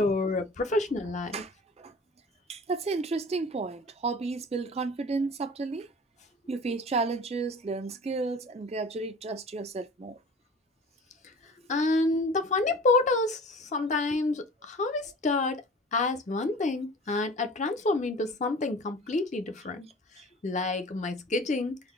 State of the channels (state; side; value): normal; both; correlation 0.42